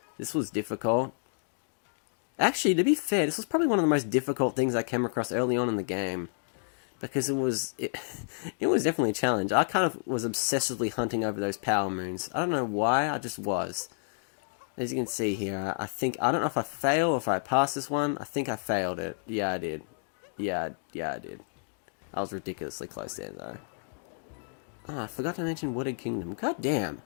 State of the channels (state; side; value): silent; right; digital silence